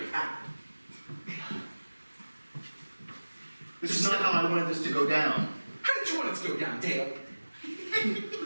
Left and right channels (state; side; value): inverted; both; correlation -1.00